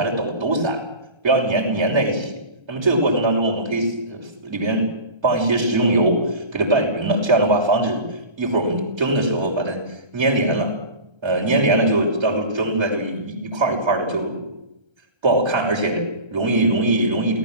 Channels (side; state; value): left; late; 1.3 ms